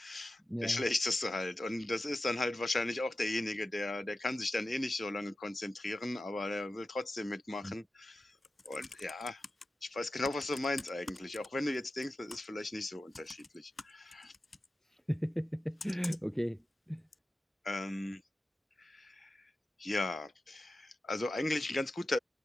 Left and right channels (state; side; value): normal; both; correlation 0.94